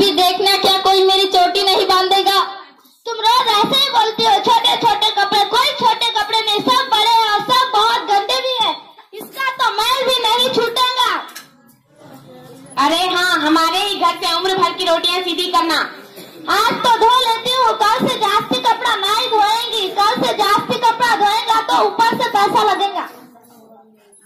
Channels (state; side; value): identical; both; correlation 1.00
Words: देखना क्या कोई मेरी चोटी नहीं बांधेगा। तुम रोज ऐसे ही बोलती हो, छोटे छोटे कपड़े। कोई छोटे कपड़े नहीं, सब बड़े हैं और सब बहुत गंदे भी है। इसका तो मैल भी नहीं छूटेगा। अरे हाँ, हमारे ही घर से उम्र भर की रोटियां सीधी करना। आज तो धो लेती हूँ, कल से जास्ती कपड़ा नहीं धोएंगी। कल से जास्ती कपड़ा धोएगा तो ऊपर से पैसा लगेगा।